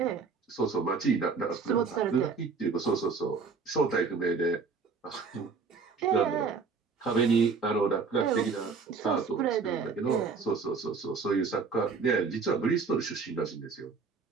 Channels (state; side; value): quieter; left; 5.0 dB